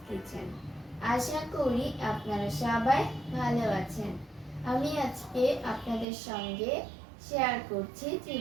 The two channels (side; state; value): left; drops out; at 6.1 s